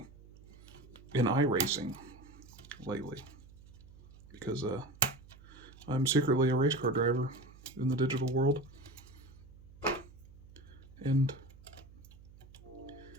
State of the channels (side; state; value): right; noise; hum, 21 dB below the sound